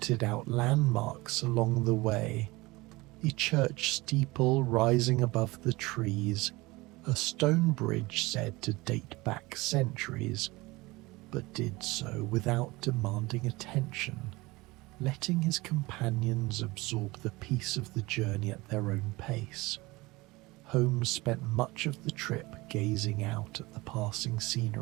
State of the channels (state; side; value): quieter; left; 21.9 dB